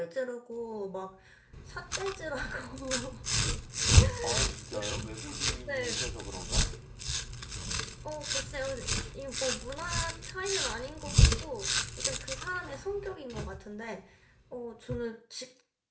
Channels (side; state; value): both; identical; correlation 1.00